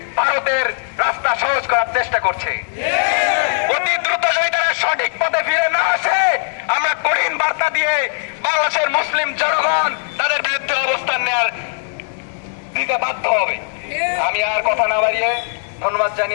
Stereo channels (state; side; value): silent; right; digital silence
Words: ভারতের রাস্তা সহজ করার চেষ্টা করছে। অতি দ্রুত যদি তারা সঠিক পথে ফিরে না আসে, আমরা কঠিন বার্তা দিয়ে বাংলাদেশের মুসলিম জনগণ তাদের বিরুদ্ধে অবস্থান নেওয়ার দিতে বাধ্য হবে। আমি আর কথা না বাড়িয়ে ধন্যবাদ